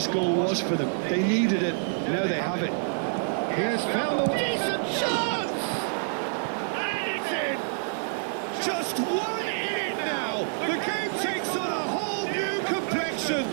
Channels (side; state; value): left; silent; digital silence